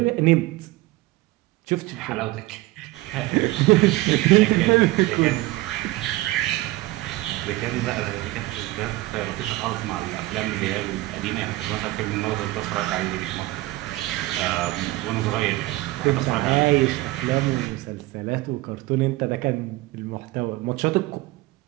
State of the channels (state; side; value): quieter; left; 19.0 dB